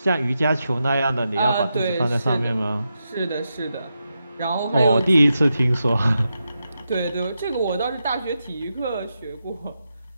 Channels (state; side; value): inverted; both; correlation -0.87